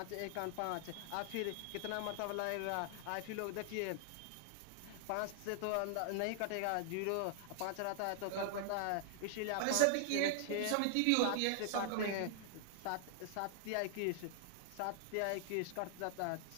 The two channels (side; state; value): both; different; correlation -0.01